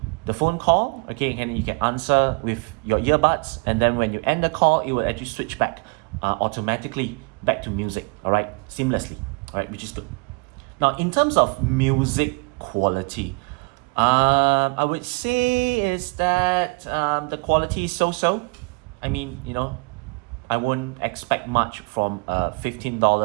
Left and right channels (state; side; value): quieter; left; 31.4 dB